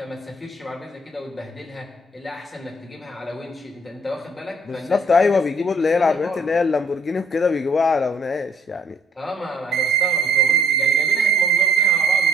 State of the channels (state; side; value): normal; both; correlation 0.64